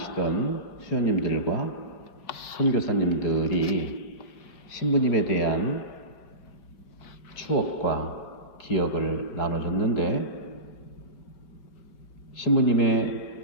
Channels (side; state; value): right; late; 4.5 ms